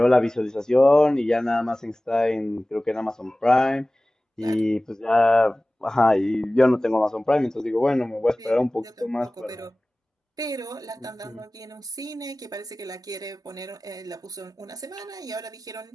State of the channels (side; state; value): both; normal; correlation 0.98